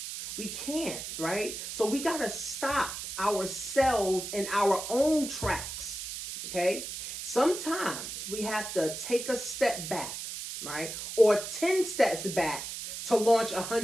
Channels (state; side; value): noise; right; hiss, 7 dB below the sound